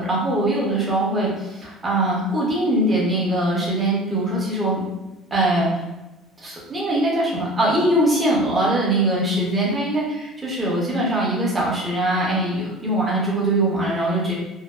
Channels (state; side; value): normal; both; correlation 0.38